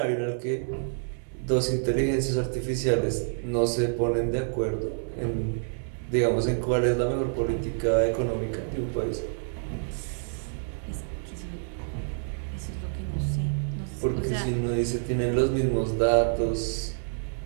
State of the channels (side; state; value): left; silent; digital silence